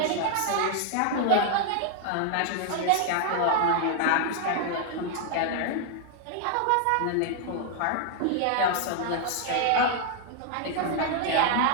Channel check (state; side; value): different; both; correlation 0.00